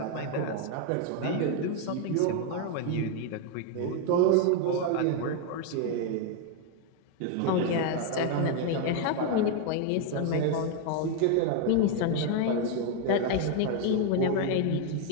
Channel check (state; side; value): different; both; correlation 0.01